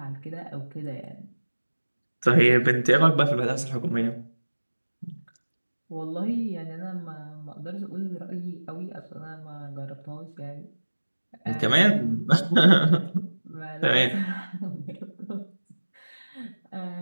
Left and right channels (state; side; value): inverted; both; correlation -1.00